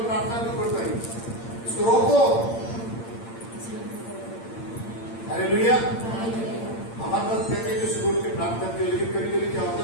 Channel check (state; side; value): late; right; 8.8 ms